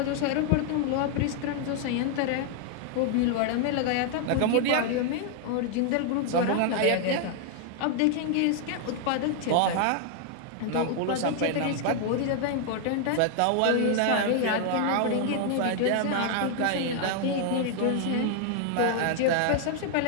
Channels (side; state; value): both; different; correlation 0.00